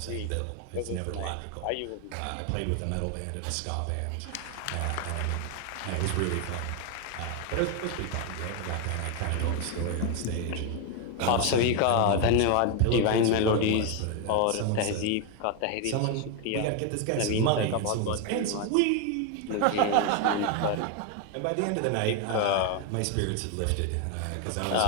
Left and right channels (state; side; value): different; both; correlation 0.01